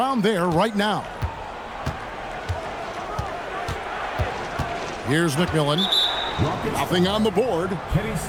there right now. Here's McMillan. Nothing on the board. Kenny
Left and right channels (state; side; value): identical; both; correlation 1.00